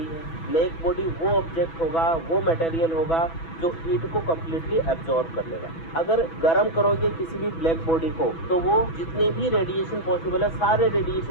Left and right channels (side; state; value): right; late; 6.1 ms